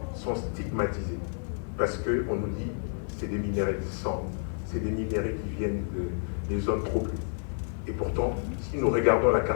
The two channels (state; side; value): silent; right; 58 dB below the other